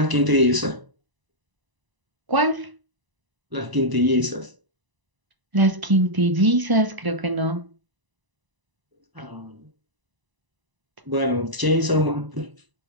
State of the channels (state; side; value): late; left; 1.0 ms